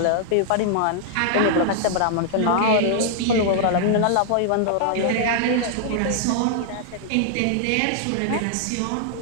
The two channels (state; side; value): different; both; correlation -0.01